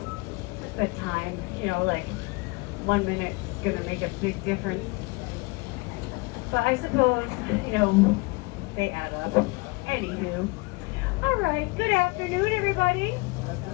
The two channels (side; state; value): right; quieter; 26.2 dB